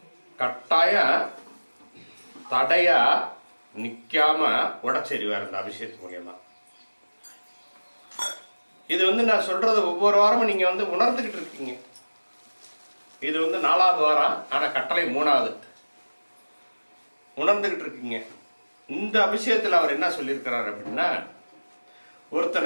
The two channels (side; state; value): both; inverted; correlation -1.00